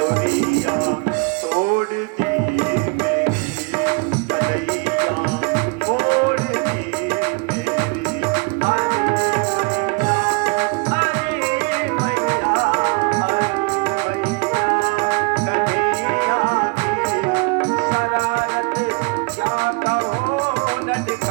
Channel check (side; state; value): left; quieter; 31.9 dB